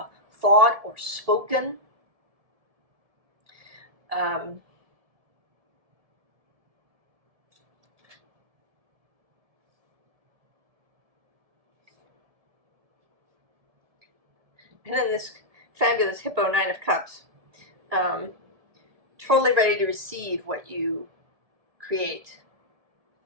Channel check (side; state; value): left; late; 1.7 ms